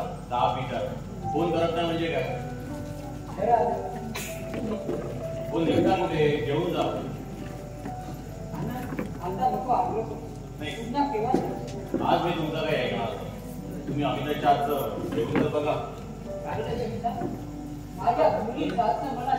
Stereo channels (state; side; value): identical; both; correlation 1.00